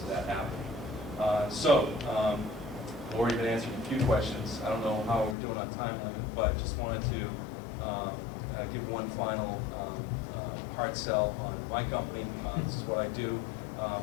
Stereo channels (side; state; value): right; drops out; at 5.4 s